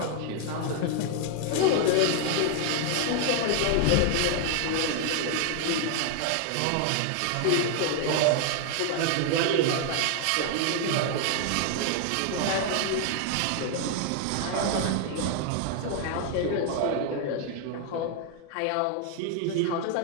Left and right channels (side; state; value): both; different; correlation 0.00